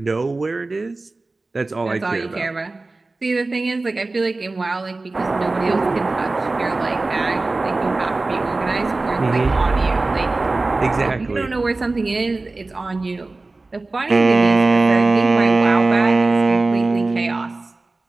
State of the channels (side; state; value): left; quieter; 3.3 dB